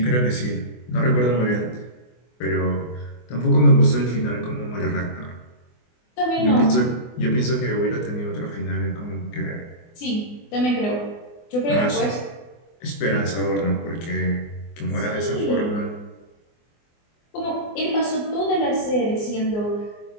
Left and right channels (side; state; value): right; late; 24 ms